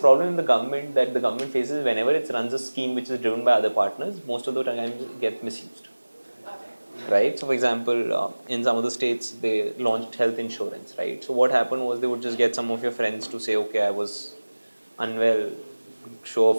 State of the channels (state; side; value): inverted; both; correlation -1.00